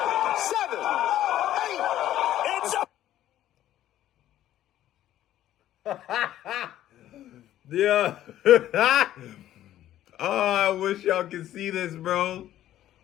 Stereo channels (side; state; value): right; quieter; 12.8 dB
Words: 7, 8. Yeah. Oh, I wish y'all could see this, bro.